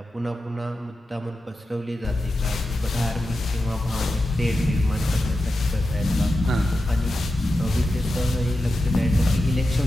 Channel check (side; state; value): both; normal; correlation 0.91